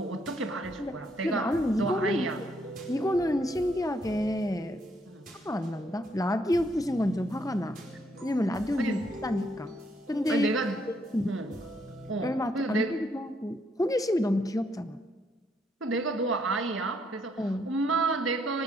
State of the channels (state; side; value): normal; both; correlation 0.72